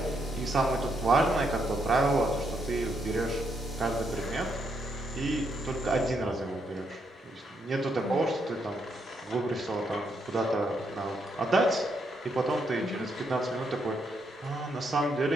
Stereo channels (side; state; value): both; normal; correlation 0.78